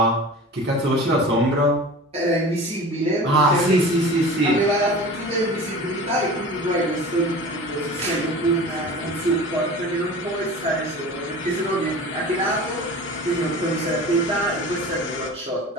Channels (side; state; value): both; normal; correlation 0.37